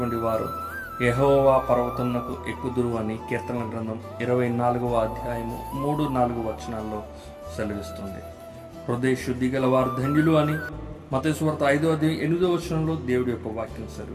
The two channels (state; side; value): identical; both; correlation 1.00